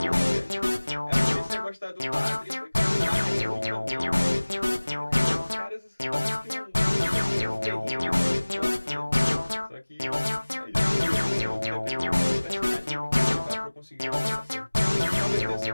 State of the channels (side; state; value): both; inverted; correlation -1.00